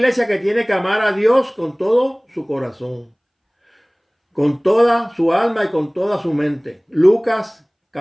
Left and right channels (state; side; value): identical; both; correlation 1.00